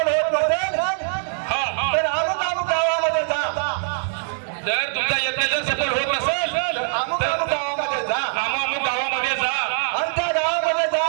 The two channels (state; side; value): silent; left; 64 dB below the other